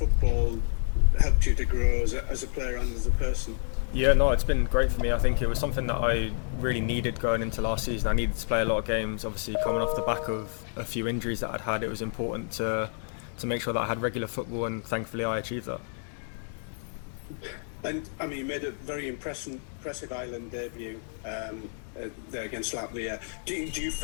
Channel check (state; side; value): silent; right; digital silence